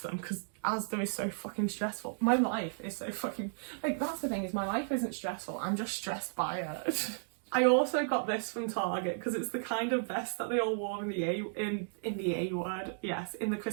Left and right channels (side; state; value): left; silent; digital silence